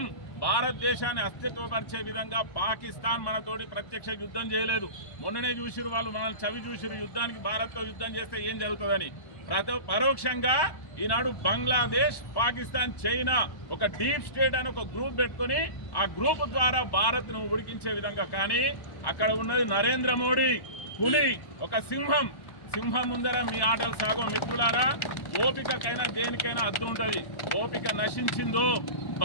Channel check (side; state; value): right; late; 1.1 ms